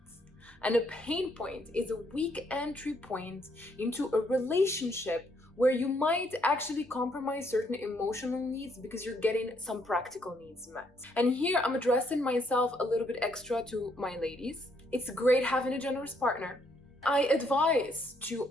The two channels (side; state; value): both; normal; correlation 0.71